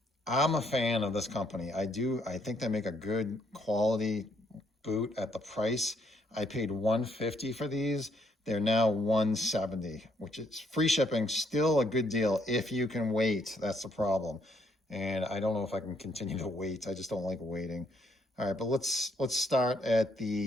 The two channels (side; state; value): both; normal; correlation 0.70